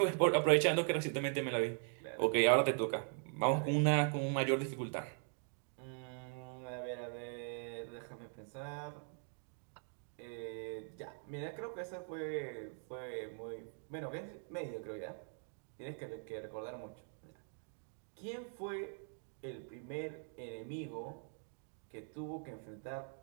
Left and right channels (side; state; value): left; silent; 51 dB below the other